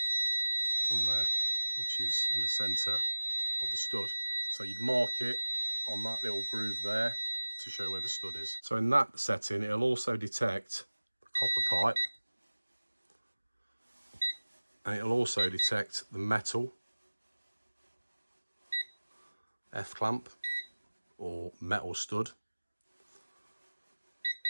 on there, which is in the centre of the stud. So you'd mark it on that little groove there to show where the stud is. So in that setting, it'll also detect the copper pipe, and it'll also detect the metal F-clamp or metal stud.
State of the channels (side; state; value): both; inverted; correlation -1.00